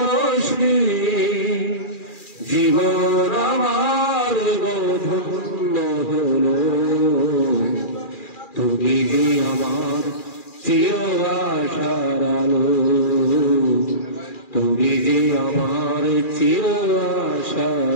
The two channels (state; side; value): late; right; 2.4 ms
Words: জীবন আমার ধন্য হলো। তুমি যে আমার চির আশার আলো, তুমি যে আমার চির